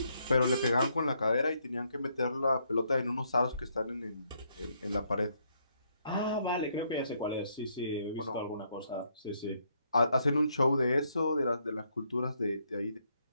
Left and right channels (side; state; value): both; inverted; correlation -0.74